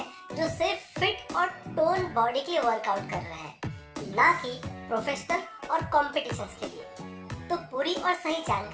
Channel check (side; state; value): both; identical; correlation 1.00